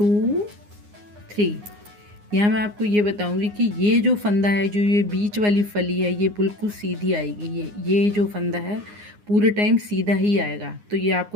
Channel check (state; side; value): late; left; 9.7 ms